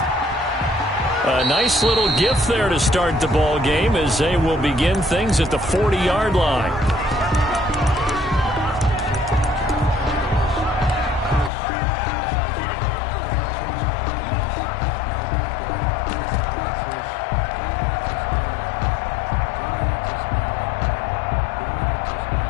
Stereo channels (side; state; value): right; drops out; at 11.5 s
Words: A nice little gift there to start the ball game as they will begin things at the 40-yard line.